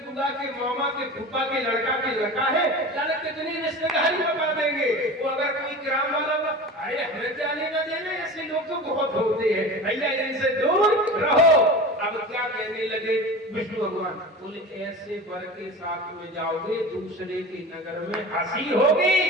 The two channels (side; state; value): both; normal; correlation 0.33